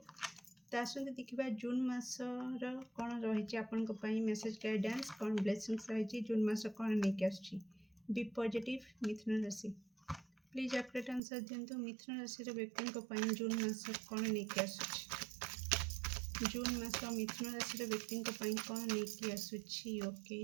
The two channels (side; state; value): left; drops out; at 11.2 s